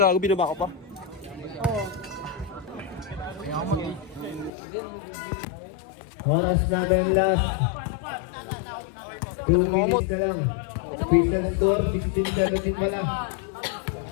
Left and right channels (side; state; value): right; drops out; at 4.5 s